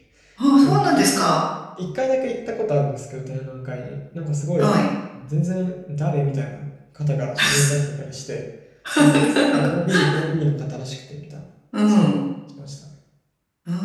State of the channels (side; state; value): both; identical; correlation 1.00